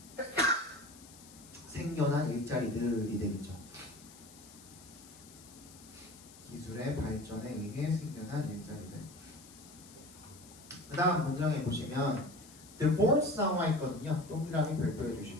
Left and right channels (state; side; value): noise; left; hiss, 20 dB below the sound